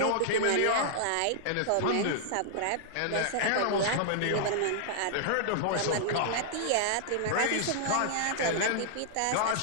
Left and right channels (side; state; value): both; different; correlation -0.01